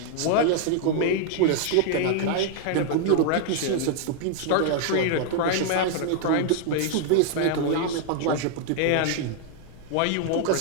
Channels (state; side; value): different; both; correlation 0.00